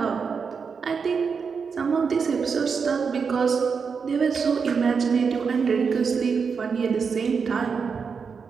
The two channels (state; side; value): quieter; left; 5.7 dB